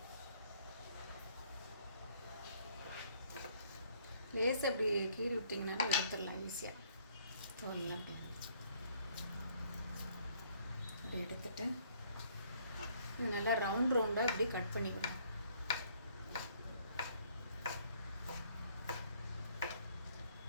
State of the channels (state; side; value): inverted; both; correlation -0.64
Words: லேசாக அப்படி கீறி விட்டிங்கனாலும் எடுத்துடலாம் ஈஸியாக. தோலெல்லாம் அப்படி எடுத்துட்டு இது நல்லா ரவுண்டாக இப்படி கட் பண்ணிவிடுங்க.